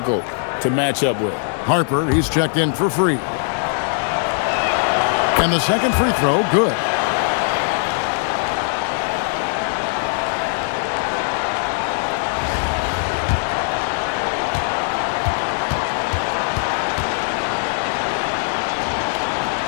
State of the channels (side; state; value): right; silent; digital silence